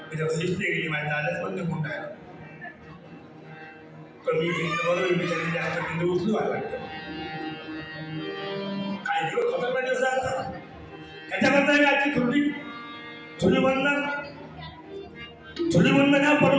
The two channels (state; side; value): identical; both; correlation 1.00